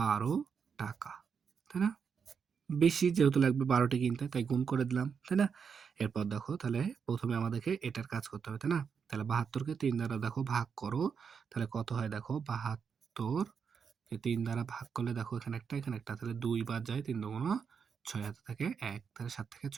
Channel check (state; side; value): quieter; left; 6.4 dB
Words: টাকা, তাই না? বেশি যেহেতু লাগবে ১২টি কিনতে, তাই গুণ করে দিলাম, তাই না? এরপর দেখো তাহলে প্রথমে আমাদেরকে এটার কাজ করতে হবে, তাই না? তাহলে ৭২ কে ৩ দ্বারা দেখো ভাগ করো, তাহলে কত হয় দেখো? ৭২ কে ৩ দ্বারা ভাগ করলে দেখো এখানে একটা এখানে একটা, তাহলে ২ বাদ যায়, ৩ দুগুণ ৬ হাতে থাকে ১, তাহলে ৭ থেকে